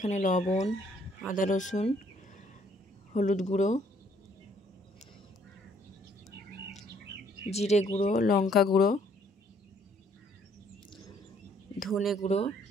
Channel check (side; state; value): both; normal; correlation 0.65